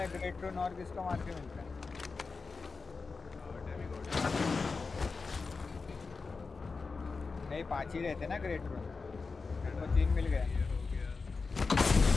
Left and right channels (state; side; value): quieter; right; 4.4 dB